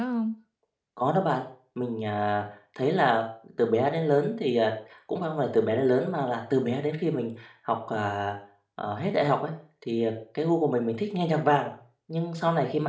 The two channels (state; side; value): identical; both; correlation 1.00